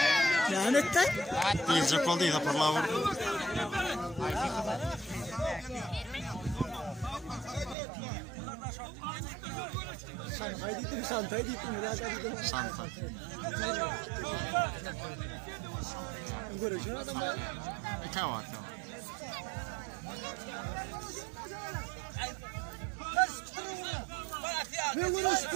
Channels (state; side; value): drops out; left; at 7.8 s